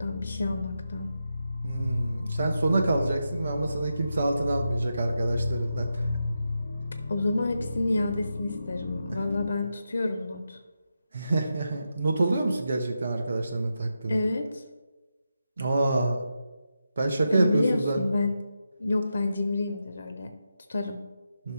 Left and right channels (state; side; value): inverted; both; correlation -0.87